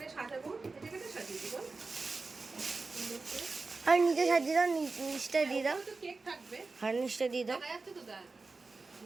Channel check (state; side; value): quieter; left; 3.9 dB